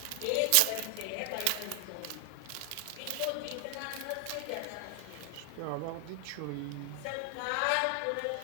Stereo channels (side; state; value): both; different; correlation 0.00